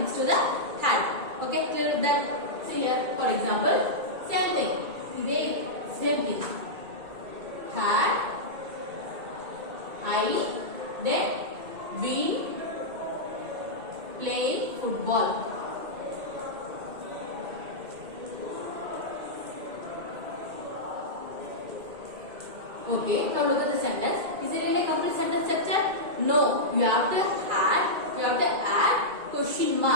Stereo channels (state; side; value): late; left; 2.2 ms